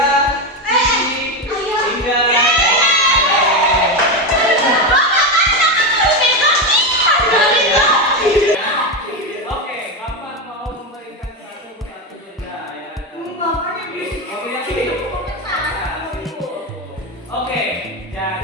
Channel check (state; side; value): normal; both; correlation 0.12